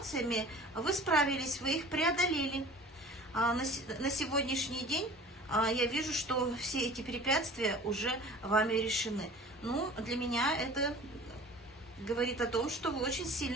вы справились, вы их преодолели. На сегодняшний день я вижу, что все эти препятствия уже вами решены. Ну, для меня это говорит о том, что вы очень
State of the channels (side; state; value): both; normal; correlation 0.43